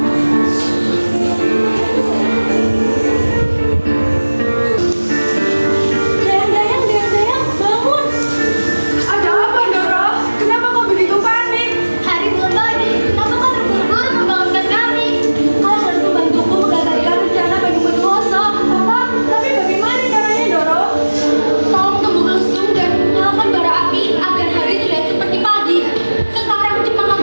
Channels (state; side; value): inverted; both; correlation -1.00